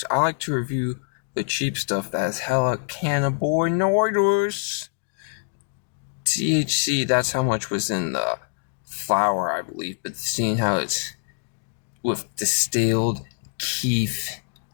I like to review the cheap stuff that has hella cannabinoids. THC, that's how much was in the flower, I believe. But seeing how it's with distilled keef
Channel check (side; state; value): right; silent; digital silence